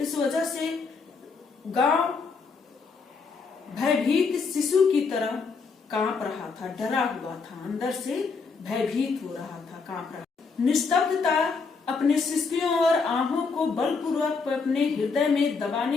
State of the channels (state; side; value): quieter; right; 4.8 dB